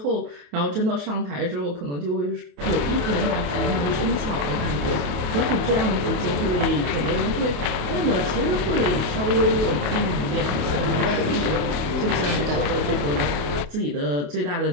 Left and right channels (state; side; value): late; left; 27 ms